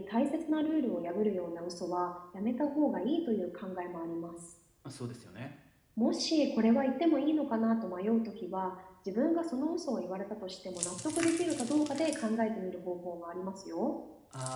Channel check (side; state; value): both; identical; correlation 1.00